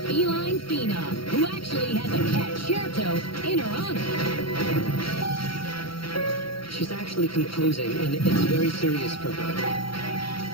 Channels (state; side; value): late; right; 0.74 ms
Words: phenom who actually has a cat Cherto in her honor. She's actually composing, and it's very serious for her.